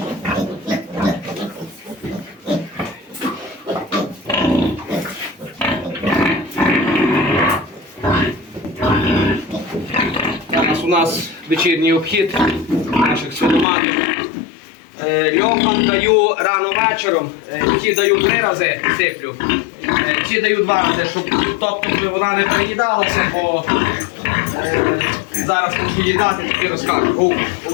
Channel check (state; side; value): drops out; right; at 13.7 s